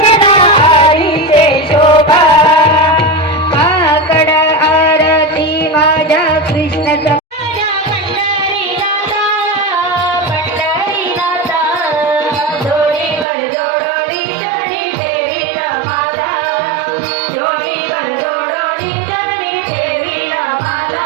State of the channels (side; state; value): left; drops out; at 13.2 s